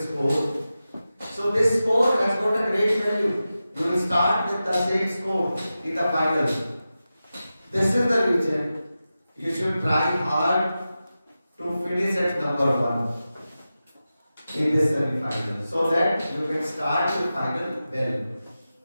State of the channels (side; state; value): both; inverted; correlation -0.93